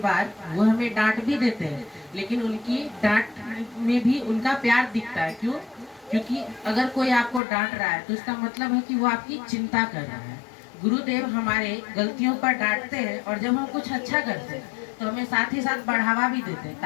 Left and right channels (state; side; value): drops out; right; at 7.4 s